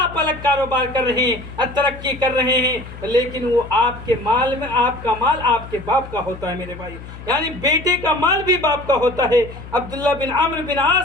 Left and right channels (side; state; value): left; noise; hum, 14 dB below the sound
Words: الگ کاروبار کر رہے ہیں، ترقی کر رہے ہیں، لیکن وہ آپ کے مال میں، آپ کا مال آپ کے باپ کا ہوتا ہے میرے بھائی، یعنی بیٹے کا مال بھی باپ کا ہوتا ہے۔ عبداللہ بن عمرو بن